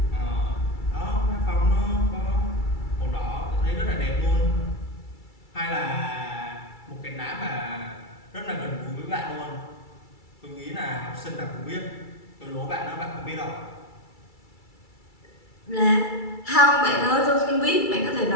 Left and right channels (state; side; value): late; right; 2.3 ms